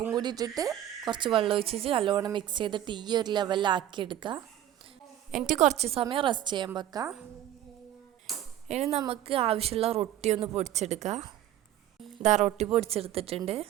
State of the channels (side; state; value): left; quieter; 12.2 dB